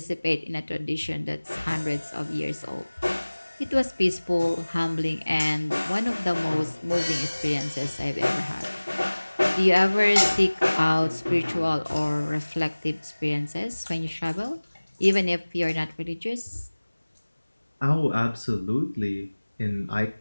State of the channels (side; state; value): both; inverted; correlation -1.00